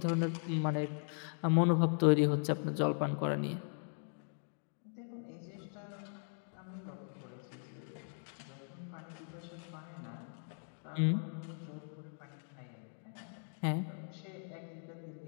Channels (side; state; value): right; silent; 52 dB below the other